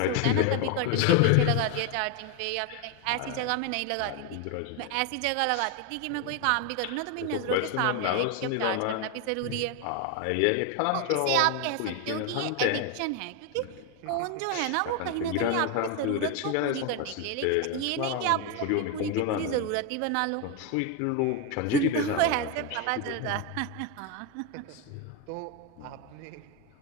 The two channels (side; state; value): both; different; correlation 0.02